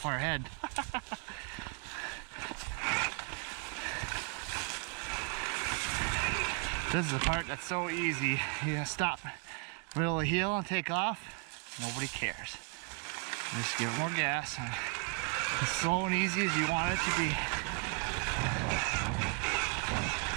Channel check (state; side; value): quieter; left; 35.0 dB